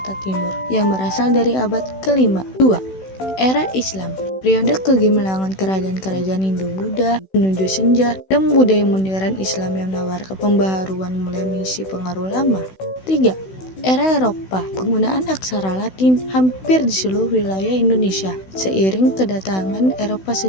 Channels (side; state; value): right; late; 16 ms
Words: Timur yang berasal dari abad ke-5. 2. Era Islam. Periode kegemilangan kerajaan-kerajaan Hindu-Buddha menuju senja dan budaya modern Islam yang menawarkan pembaharuan mulai mengisi pengaruh lama. 3. Era Eropa. Penggunaan aksara Latin hampir di seluruh wilayah Indonesia seiring kedatangan Eropa